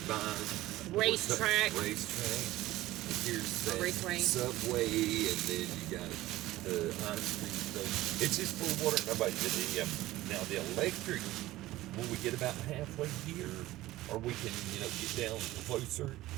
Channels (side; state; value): left; quieter; 16.6 dB